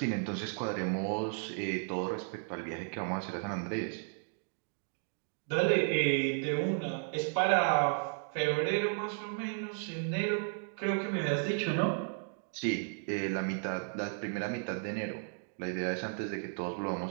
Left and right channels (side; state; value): left; silent; 55 dB below the other